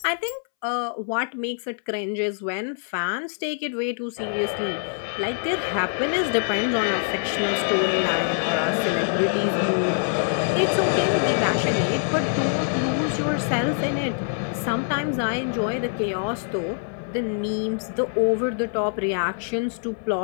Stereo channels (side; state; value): right; silent; 62 dB below the other